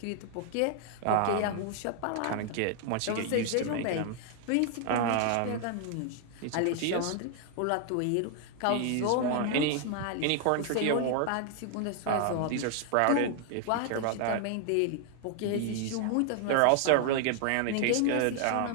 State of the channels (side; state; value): both; different; correlation 0.00